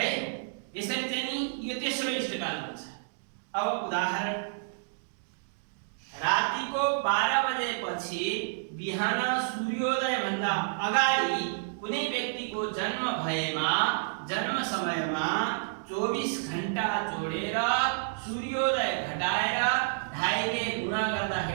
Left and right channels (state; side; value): silent; left; digital silence